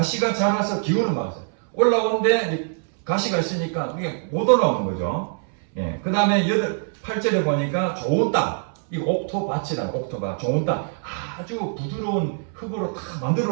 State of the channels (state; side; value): silent; left; 63 dB below the other